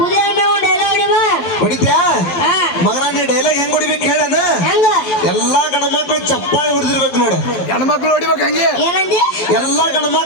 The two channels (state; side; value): late; right; 12 ms